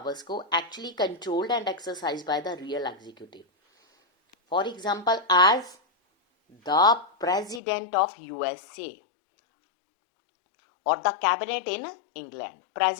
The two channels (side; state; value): right; drops out; at 7.6 s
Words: को, actually controlled and exercise by the real executive. For example as the president of USA और the cabinet in England.